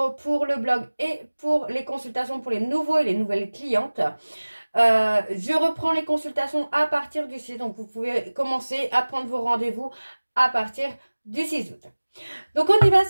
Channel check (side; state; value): both; inverted; correlation -1.00